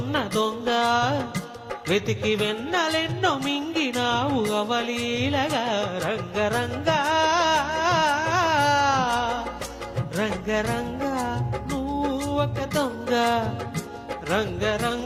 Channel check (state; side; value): identical; both; correlation 1.00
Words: దొంగ, వెతికి వెన్నలెన్నో మింగినావు అవలీలగా. రంగరంగ రంగరంగ నువ్వు ఒక దొంగ,